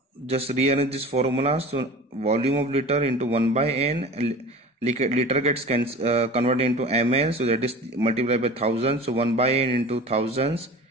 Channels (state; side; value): normal; both; correlation 0.38